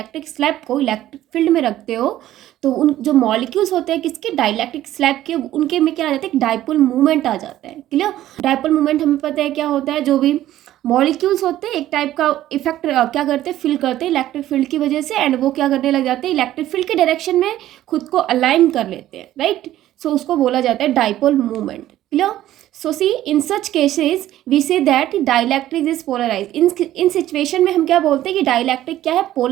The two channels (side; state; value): left; quieter; 13.6 dB